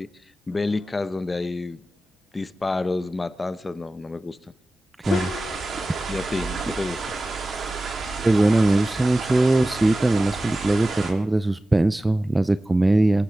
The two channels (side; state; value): both; normal; correlation 0.96